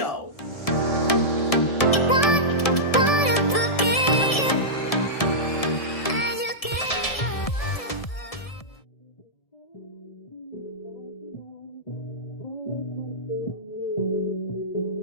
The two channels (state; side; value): late; right; 1.7 ms